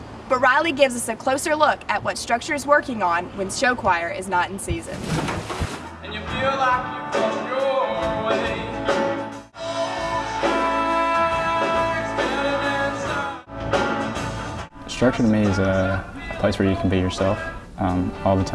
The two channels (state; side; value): identical; both; correlation 1.00